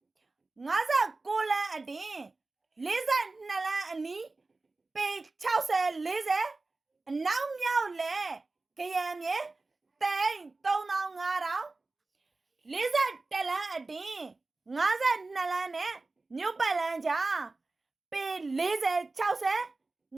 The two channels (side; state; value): left; quieter; 3.4 dB